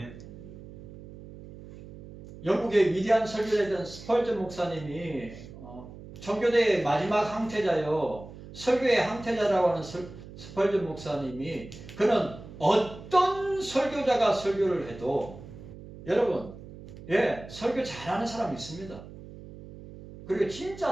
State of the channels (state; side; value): noise; right; hum, 15 dB below the sound